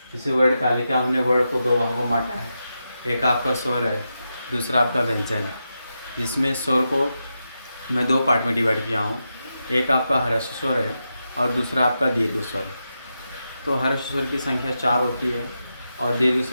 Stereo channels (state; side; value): inverted; both; correlation -0.87